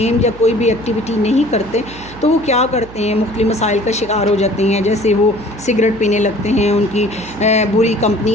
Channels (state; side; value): noise; right; hum, 17 dB below the sound